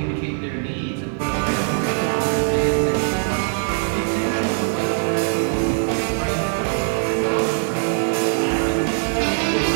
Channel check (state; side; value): silent; left; 56 dB below the other